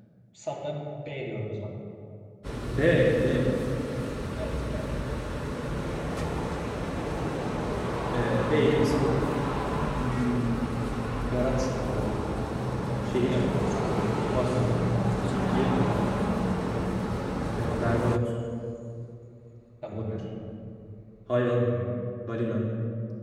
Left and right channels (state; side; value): identical; both; correlation 1.00